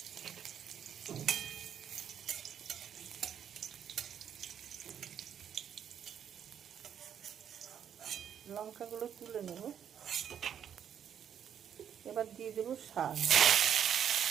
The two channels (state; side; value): quieter; left; 8.8 dB